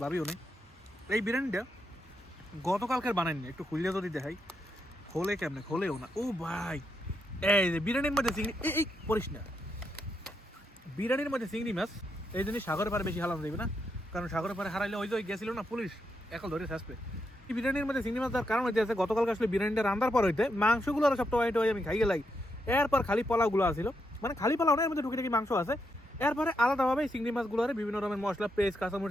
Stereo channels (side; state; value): both; normal; correlation 0.81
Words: ভাবিও নেই। এই বিরিয়ানিটা গতকালকের বানাইনি, একটু খুললে যদি দেখাই, খোলে কেমনে, খোলেও না। ও ভাই, এই যে বিরিয়ানির মধ্যে চিংড়ি, এই পড়িস না, বিরিয়ানির মধ্যে চিংড়ি মাছ, এই জন্য সাগরে পারে বেশি হালানো যাবে না, কারণ সাগরে পারে হারাইলে ওই যে গেছিল না পুলিশ, এখন ধরে আসবে। এই বিরিয়ানির মধ্যে চিংড়ি মাছ দেওয়ার কারণ হইতে আছে, গতকালকে আসলে বিরিয়ানিটা রান্নার পর হইতে মাংসগুলো আর সবটা ওয়াইট আমি খাই গেলাই, এরপর খালি পোলাওগুলো আসছিল, মানে খালি পোলাও না, এর মধ্যে টুকিটাকি মাংস আছে, এরপরে আলাদাভাবে চিংড়ি মাছগুলো বিভিন্ন রকমের মশলা, পেস্ট,